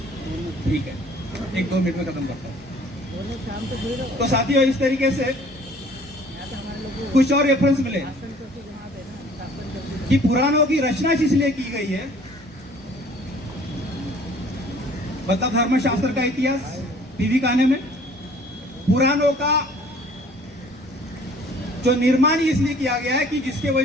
ठीक है, 1-2 मिनट में खत्म करता हूँ। तो साथियों इस तरीके से कुछ और रेफरेंस मिले कि पुराणों की रचना इसलिए की गई है, मतलब धर्मशास्त्र का इतिहास पीवी काने में पुराणों का जो निर्माण इसलिए किया गया है कि जिसके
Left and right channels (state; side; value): normal; both; correlation 0.54